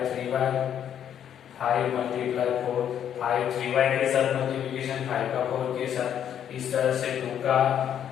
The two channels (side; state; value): right; quieter; 9.5 dB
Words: 3y, 5 मल्टीप्लाई 4, 5 3y के साथ मल्टीप्लिकेशन, 5 का 4 के साथ, इस तरह से 2 का